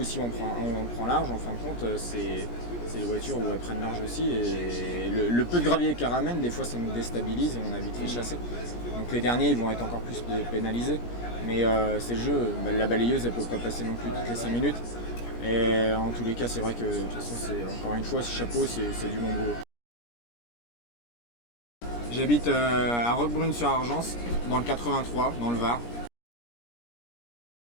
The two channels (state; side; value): late; right; 17 ms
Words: aussi on prend large. En fin de compte, c'est les voitures où elles prennent large aussi, et le peu de gravier qu'elles ramènent, des fois ça nous déstabilise et on a vite fait chasser. Donc les derniers ils vont être encore plus pénalisés, mais c'est le jeu. La balayeuse elle peut pas passer non plus toutes les 5 minutes, et en tous les cas c'est vrai que de toute façon, c'est encore une fois, ce chapeau, c'est du bon boulot. J'habite à Roquebrune-sur-Argence, dans le 83, dans le Var.